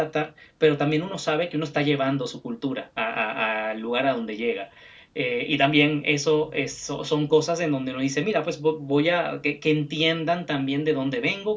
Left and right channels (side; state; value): both; identical; correlation 1.00